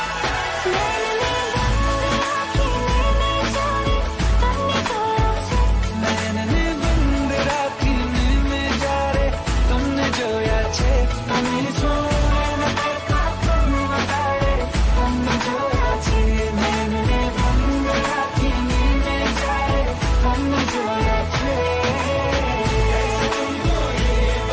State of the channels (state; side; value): identical; both; correlation 1.00